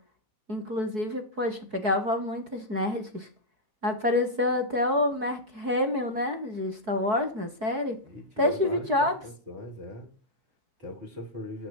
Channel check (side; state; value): left; late; 4.6 ms